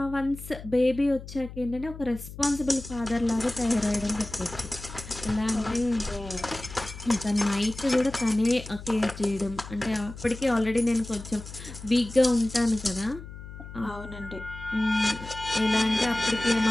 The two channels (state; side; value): noise; left; hum, 13 dB below the sound